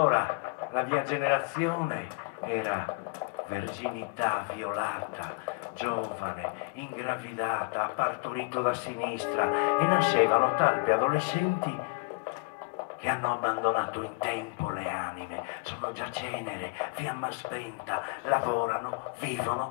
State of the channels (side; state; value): right; quieter; 30.6 dB